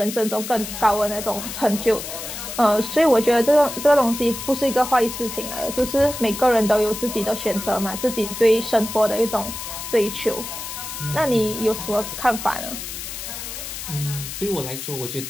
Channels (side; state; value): left; noise; hiss, 8 dB below the sound